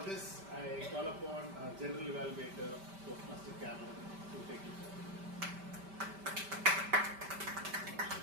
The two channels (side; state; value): left; late; 5.1 ms